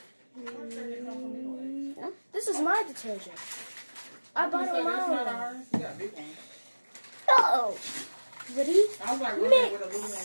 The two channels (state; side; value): inverted; both; correlation -1.00